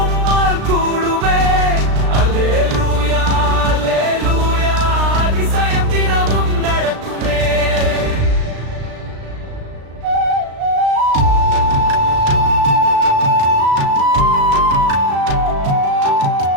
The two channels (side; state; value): left; late; 36 ms